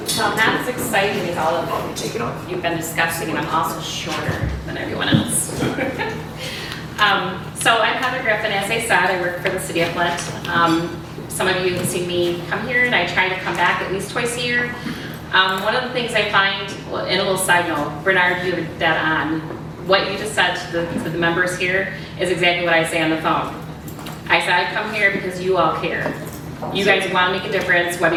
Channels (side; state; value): both; identical; correlation 1.00